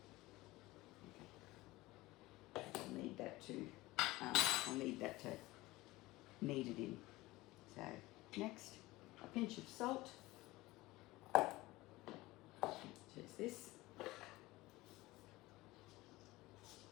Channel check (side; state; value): right; quieter; 19.6 dB